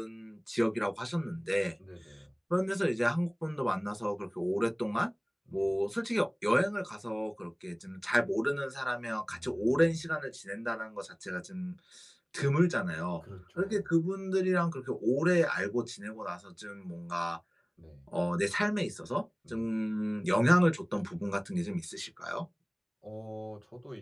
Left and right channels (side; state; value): both; identical; correlation 1.00